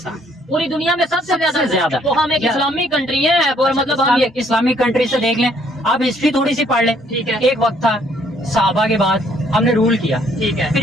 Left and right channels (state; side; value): normal; both; correlation 0.65